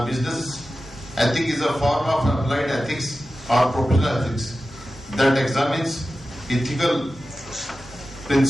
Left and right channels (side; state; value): both; normal; correlation 0.94